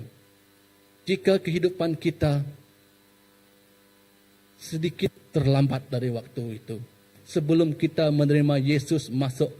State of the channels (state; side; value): identical; both; correlation 1.00